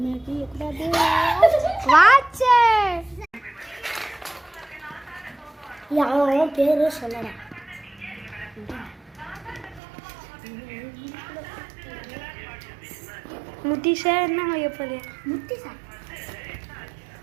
வாட்ச் யாரும் பேரு சொல்லடா முத்திஷா என்ன எப்போது முத்திஷா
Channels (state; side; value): drops out; left; at 9.8 s